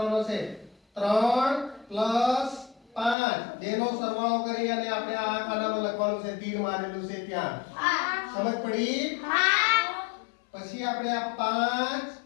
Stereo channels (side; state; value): right; drops out; at 3.2 s